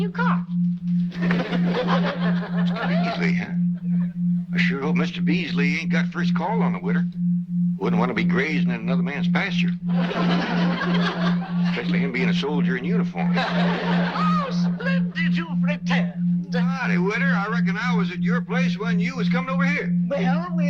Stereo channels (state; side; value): identical; both; correlation 1.00